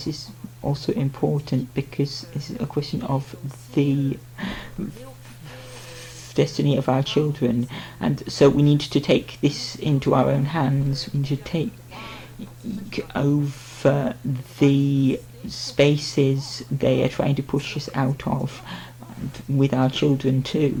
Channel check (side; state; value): both; identical; correlation 1.00